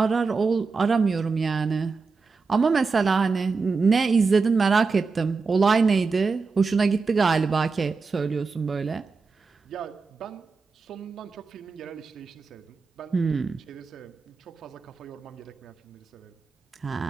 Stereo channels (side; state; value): left; quieter; 4.5 dB